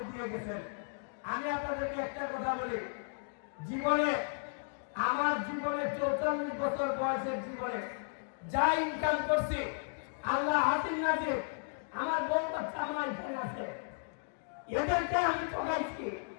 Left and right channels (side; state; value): right; silent; digital silence